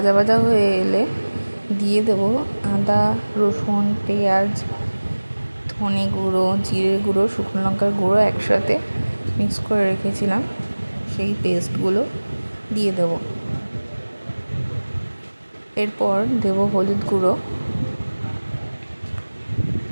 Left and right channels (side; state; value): both; inverted; correlation -1.00